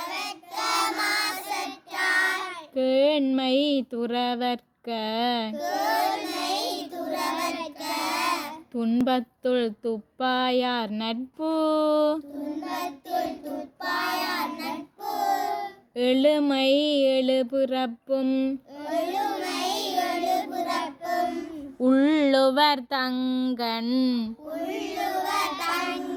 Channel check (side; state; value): both; identical; correlation 1.00